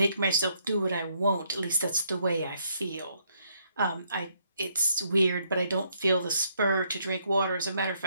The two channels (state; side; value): inverted; both; correlation -0.71